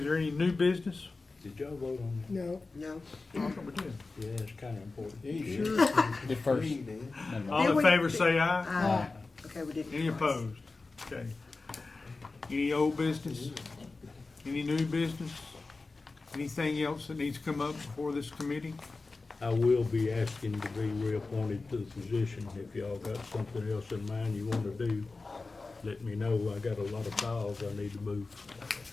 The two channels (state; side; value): quieter; right; 3.7 dB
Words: there any new business? Did y'all vote on No, No. I thought we did. that? Yeah, it's kind of important. At first. All in favor, say aye. Okay, we did. Any opposed? Okay. Any old business? Any new business? Anything else that needs to come up before this committee? I will be asking to be reappointed to the position. If y'all got something else in mind you want to do, let me know. I got a lot of files I need to move.